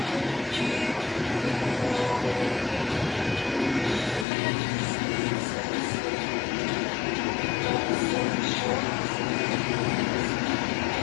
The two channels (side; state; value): right; drops out; at 4.2 s